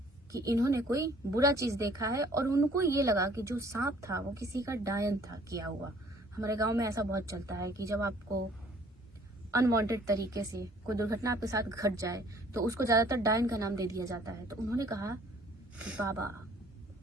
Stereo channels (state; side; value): normal; both; correlation 0.57